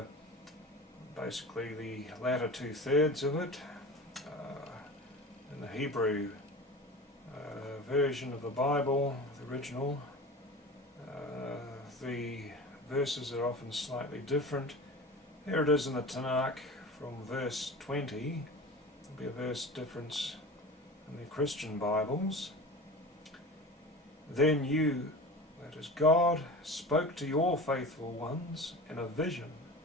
basically the latter 2/3 of it. In the Hebrew version of the Bible, the original, the verses are often slightly different. Here it is in the Tanakh from verse 20. There'll be a verse difference in the Christian Bibles. Then you, that is God, spoke to your faithful ones in a vision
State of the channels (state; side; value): normal; both; correlation 0.34